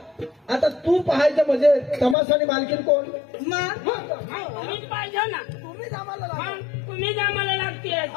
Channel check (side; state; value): right; drops out; at 2.1 s